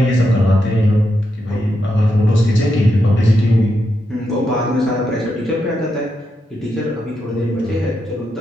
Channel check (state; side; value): normal; both; correlation 0.84